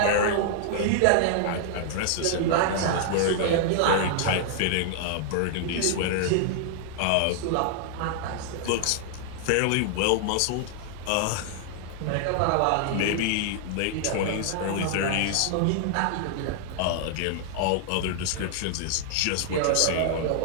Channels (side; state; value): both; different; correlation -0.01